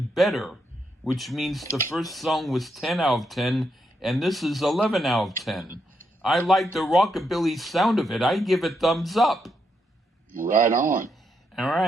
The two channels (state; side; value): normal; both; correlation 0.80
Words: better, which means the first song was 10 out of 10, and this is 11 out of 10. I like the rockabilly sound of it. I give it thumbs up. Right on. All